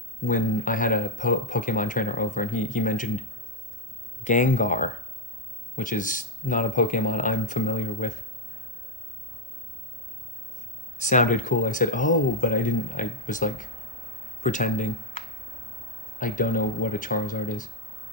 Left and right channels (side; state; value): both; normal; correlation 0.01